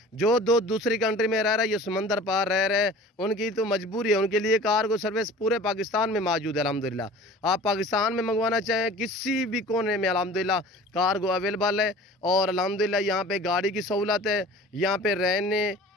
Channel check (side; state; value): both; normal; correlation 0.43